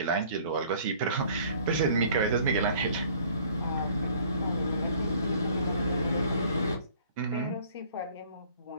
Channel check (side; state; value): both; inverted; correlation -0.55